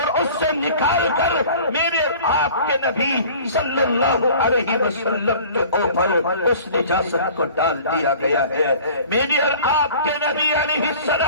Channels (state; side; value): inverted; both; correlation -0.45